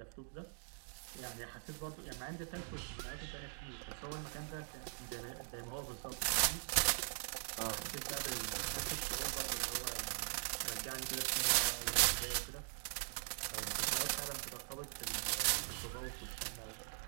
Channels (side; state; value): left; silent; digital silence